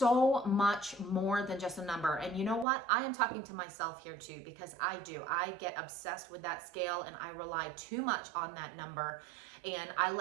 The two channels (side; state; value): left; drops out; at 2.7 s